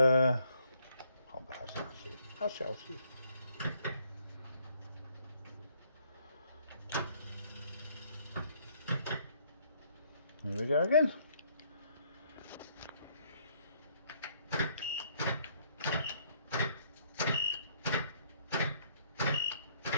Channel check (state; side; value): inverted; both; correlation -0.67